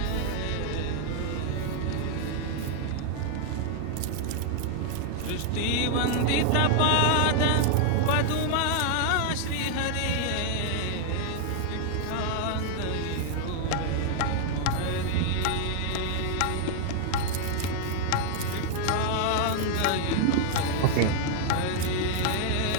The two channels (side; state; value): both; different; correlation 0.00